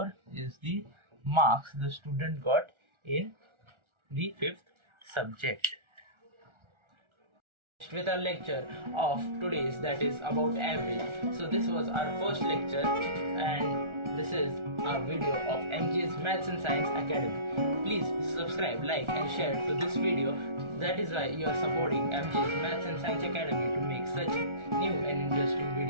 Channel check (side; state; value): left; late; 1.4 ms